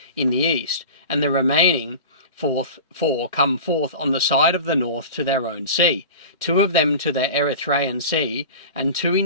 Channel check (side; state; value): both; inverted; correlation -0.33